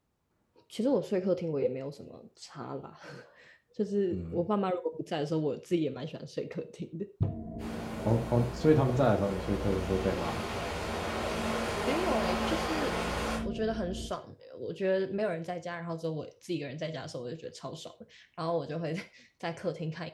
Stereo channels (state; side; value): identical; both; correlation 1.00